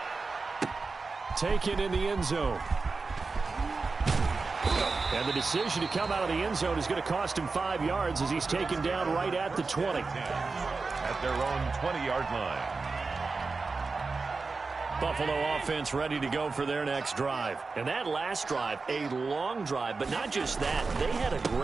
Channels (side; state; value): left; quieter; 4.1 dB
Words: Taken in the end zone. And the decision to come out of the end zone is going to cost him 5 yards as he's taken down right at the 20. At their own 20-yard line. Buffalo offense ready to go for their next drive. And that last drive, a long drive, but not just that. They had a